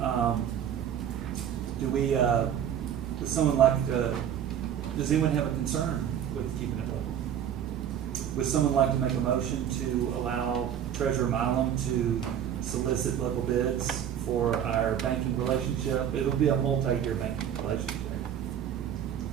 would someone like to, does anyone have a concern with keeping it local? Would someone like to make a motion to allow Treasurer Milam to solicit local bids for our banking relationship? It'll be a multi-year banking relationship.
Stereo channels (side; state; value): left; quieter; 9.5 dB